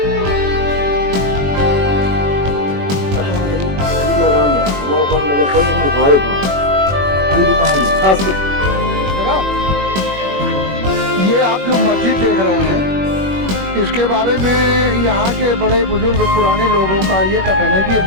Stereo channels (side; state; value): left; late; 21 ms